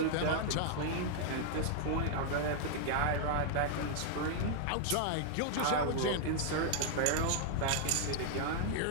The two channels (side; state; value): both; different; correlation -0.01